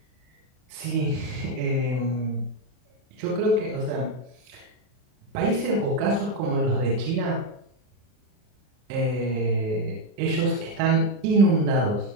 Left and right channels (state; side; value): late; left; 39 ms